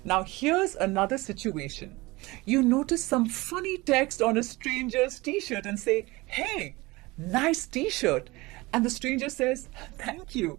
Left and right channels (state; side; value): quieter; left; 22.1 dB